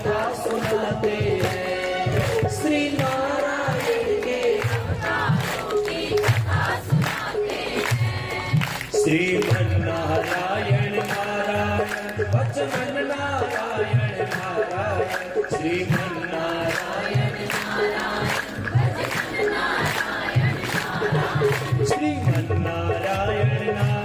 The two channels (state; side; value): identical; both; correlation 1.00